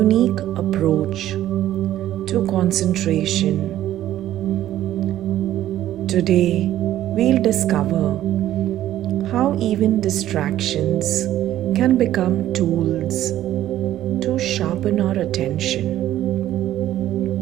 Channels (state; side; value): quieter; left; 13.0 dB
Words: approach to concentration, today we'll discover how even distractions can become tools to sharpen our attention.